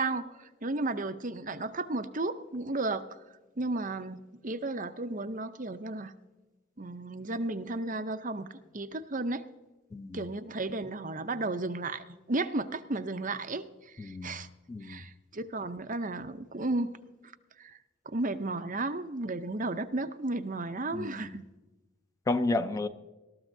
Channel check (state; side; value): normal; both; correlation 0.38